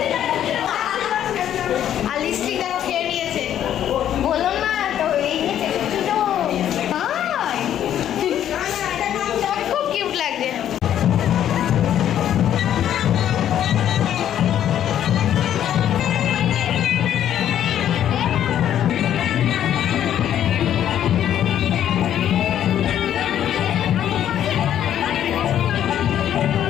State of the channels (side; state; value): right; quieter; 10.6 dB